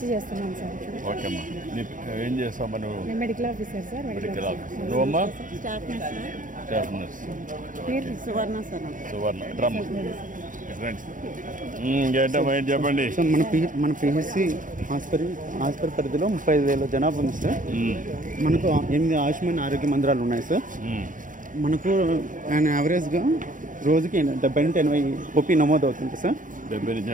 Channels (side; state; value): left; late; 0.38 ms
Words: చేస్తున్నాం సార్. ఓకే అమ్మా. ఏం చేస్తావు నువ్వు? నేను medical officer sir. Medical officer. నువ్వమ్మా? Staff nurse. పేరు Suvarna sir. Suvarna drum friends. ఏంటమ్మా ఏంటి చెప్పండి. సార్ మన పిహెచ్సి హాస్పిటల్ పరిధిలో 35,000 జనాభా ఉంది సార్. మనకు 8 ఆయుష్మాన్ ఆరోగ్య మందిరాలు ఉన్నాయి సార్. మనకు యావరేజ్గా రోజుకి 70 నుండి 80 ఓపీ నమోదు అవుతుంది సార్. 70